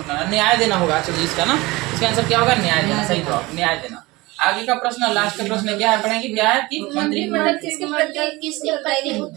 न्याय देना होगा। चलिए इसका ना, इसका आंसर क्या होगा, न्याय देना, सही जवाब न्याय देना। आगे का प्रश्न, लास्ट का प्रश्न क्या है पढ़ेंगे, क्या है कि मंत्रिमंडल किसके प्रति उत्तरदायी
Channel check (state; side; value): quieter; left; 21.7 dB